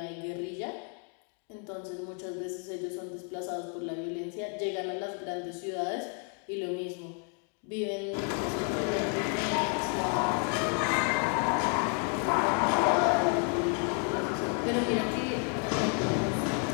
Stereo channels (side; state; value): right; quieter; 40.0 dB